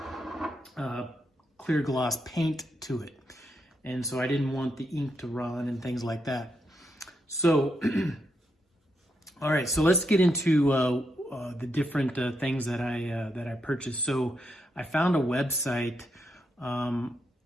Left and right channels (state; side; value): normal; both; correlation 0.81